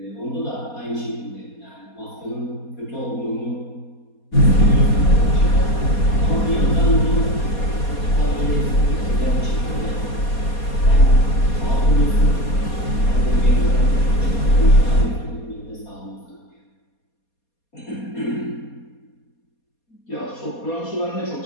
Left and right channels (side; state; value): right; late; 4.2 ms